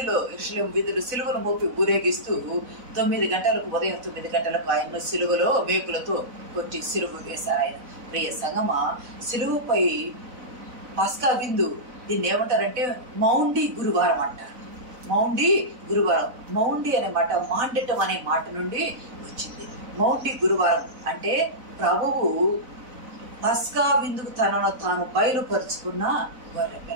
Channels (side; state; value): left; late; 4.0 ms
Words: వీధులు సిలువను మోపి ఊరేగిస్తూ 9 గంటలకు, ఉదయం 9 గంటలకు ఆయన్ను సిలువలో మేకులతో కొట్టి సిలువ వేశారు ఆయన. ప్రియ సంగమా, సిలువపై పస్కా విందు, దీన్ని ఏమంటారంటే మౌండి గురువారం అంటారు. మౌండి గురువారం, మౌండి అనే మాట మాండటం అనే మాట నుండి వచ్చింది. మౌండి గురువారం అంటే ప్రభువు పస్కా విందుకు తనను తాను బయలుపరుచుకున్న